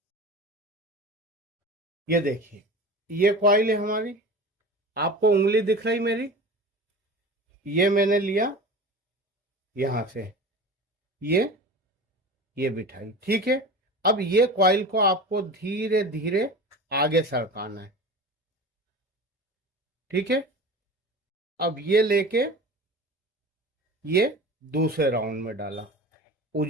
ये देखिए, ये कॉइल है हमारी, आपको उंगली दिख रही मेरी, ये मैंने लिया यहां से, ये बिठाई, ठीक है। अब ये कॉइल को आपको धीरे धीरे आगे सरकाना है, ठीक है। अब ये लेके ये दूसरे राउंड में डाला।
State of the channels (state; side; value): normal; both; correlation 0.34